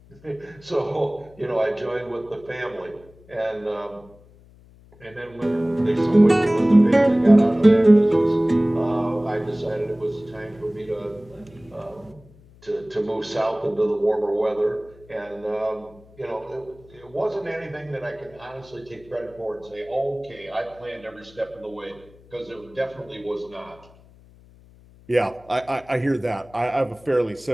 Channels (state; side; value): noise; left; hum, 25 dB below the sound